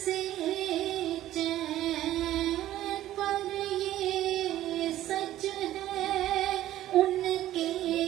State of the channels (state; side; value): quieter; left; 13.7 dB